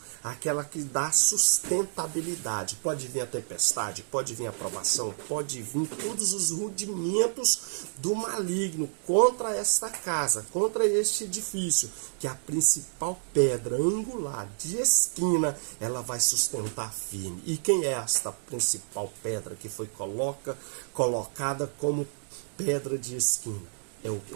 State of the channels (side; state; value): left; silent; digital silence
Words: aquela que dá sustentabilidade. Pode vir a tempestade, pode vir a provação, pode vir todos os rudimentos do maligno contra esta casa, contra este edifício, que a principal pedra angular de esquina, ela vai sustentar firme. E quem é esta principal pedra que foi colocada como pedra de esquina? É o